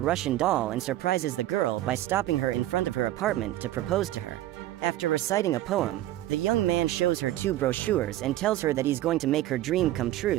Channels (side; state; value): left; quieter; 14.7 dB